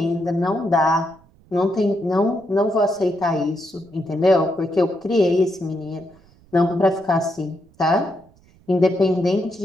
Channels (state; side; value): noise; right; rumble, 29 dB below the sound